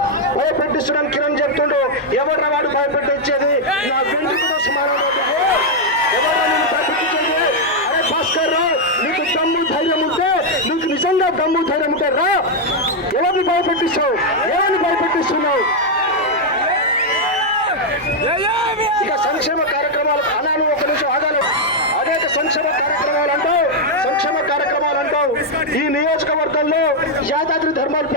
భయపెట్టిస్తున్నాను కిరణ్ చెప్తుండు. ఎవరు వాడు భయపెట్టించేది? నా వెంట్రుకతో సమానం. ఎవరు నేను భయపెట్టించేది? అరే భాస్కర్ రావు, నీకు దమ్ము ధైర్యం ఉంటే, నీకు నిజంగా దమ్ము ధైర్యం ఉంటే రా. ఎవరిని భయపెట్టిస్తున్నావు? ఇక సంక్షేమ కార్యక్రమాలు అన్నాను, ఒక నిమిషం ఆగాలి. అనేక సంక్షేమ కార్యక్రమాలు అంటావు. ఈ నియోజకవర్గంలో యాదాద్రి థర్మల్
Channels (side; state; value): right; noise; hum, 27 dB below the sound